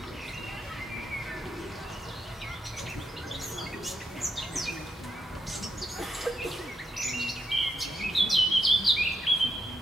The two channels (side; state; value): both; normal; correlation 0.82